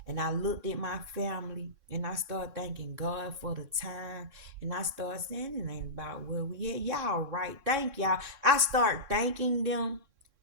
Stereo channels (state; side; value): late; left; 3.6 ms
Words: and I looked at my family and I started thanking God for the time and I started saying it ain't about where we at. Y'all right. Thank y'all. I start thanking them.